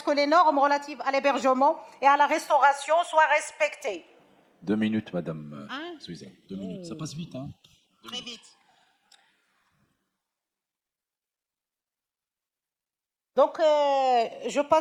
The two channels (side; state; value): both; identical; correlation 1.00